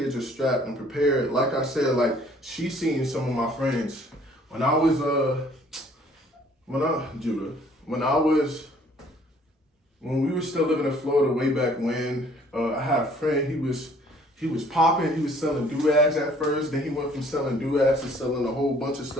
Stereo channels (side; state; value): both; normal; correlation 0.58